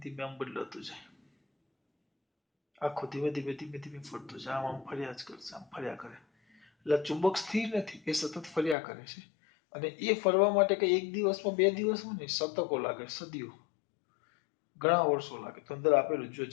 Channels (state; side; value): drops out; right; at 8.8 s